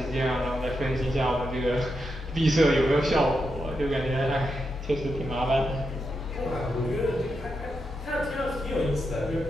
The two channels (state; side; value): normal; both; correlation 0.85